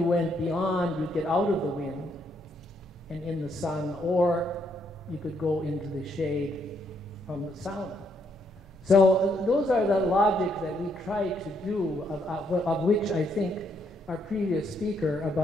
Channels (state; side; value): normal; both; correlation 0.74